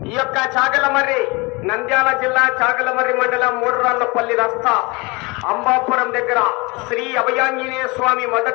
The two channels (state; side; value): quieter; right; 26.0 dB